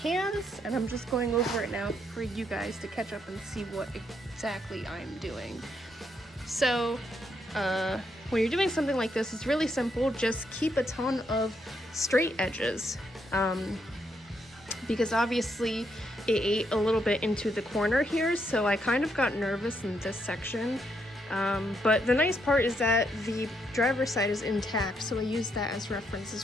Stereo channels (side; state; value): both; normal; correlation 0.77